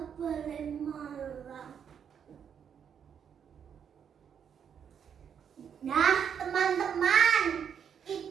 Balai Malang. Nah, teman-teman,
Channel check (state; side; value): quieter; left; 7.9 dB